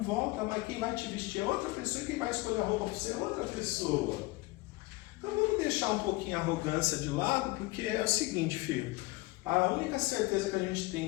volta, mas quem vai te vestir é outra pessoa e quem vai escolher a roupa para você é outra pessoa. Então vamos deixar um pouquinho a arrogância de lado, porque é o seguinte, filho. A única certeza que a gente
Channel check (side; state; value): right; quieter; 21.9 dB